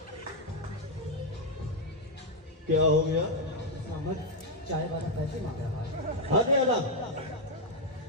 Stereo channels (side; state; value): both; normal; correlation 0.01